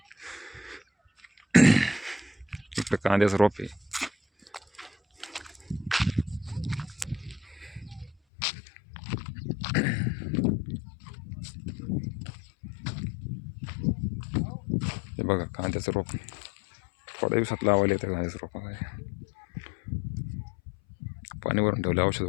इकडे कांद्याचं रोप आहे. हे बघा कांद्याचं रोप थोड्या दिवसात लावायला येतं. कांद्याचं रोप पाणी भरून ठेवलं औषध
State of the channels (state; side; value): drops out; right; at 8.2 s